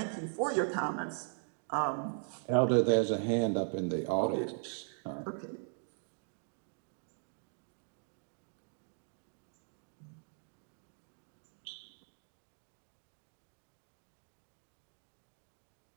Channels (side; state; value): left; silent; digital silence